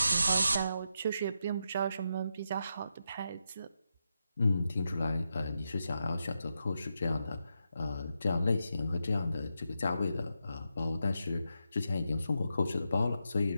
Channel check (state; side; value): inverted; both; correlation -0.85